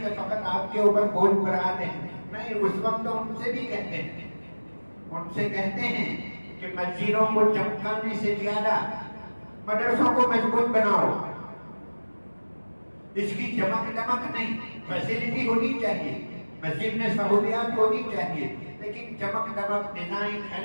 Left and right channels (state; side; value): inverted; both; correlation -1.00